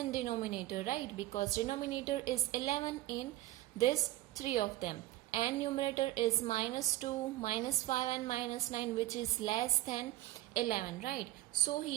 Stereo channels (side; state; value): left; quieter; 16.3 dB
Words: denominator, right? Because denominator is 11 in this three of them, and numerator is minus 2, minus 5 and minus 9, which is less than 11, right? So